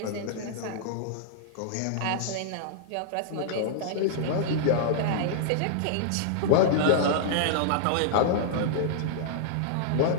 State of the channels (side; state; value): both; different; correlation -0.01